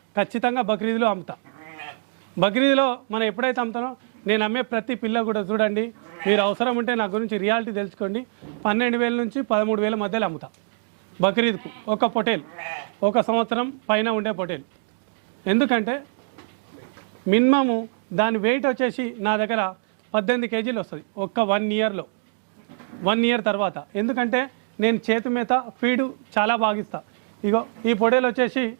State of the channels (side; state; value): left; silent; digital silence